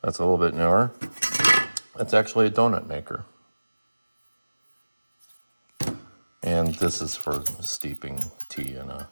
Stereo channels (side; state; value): both; inverted; correlation -1.00